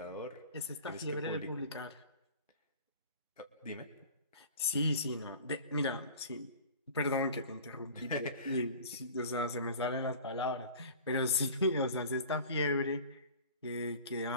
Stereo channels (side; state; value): both; inverted; correlation -0.41